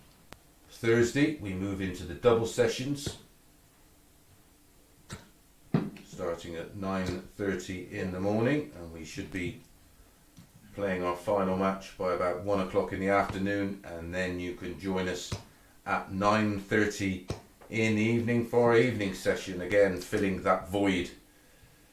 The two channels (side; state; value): both; identical; correlation 1.00